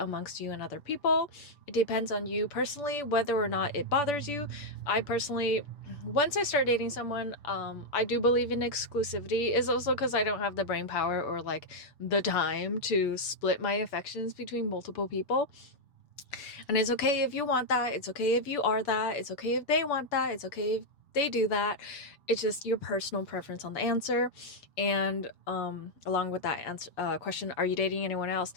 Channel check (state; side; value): late; right; 6.9 ms